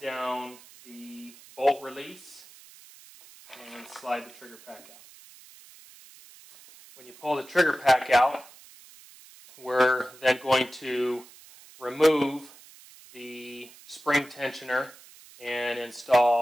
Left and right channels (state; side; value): noise; right; hiss, 22 dB below the sound